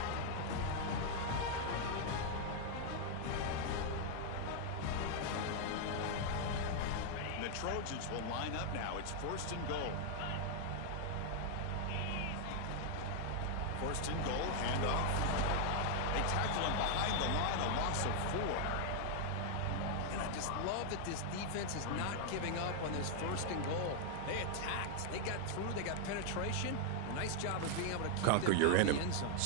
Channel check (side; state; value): both; different; correlation 0.00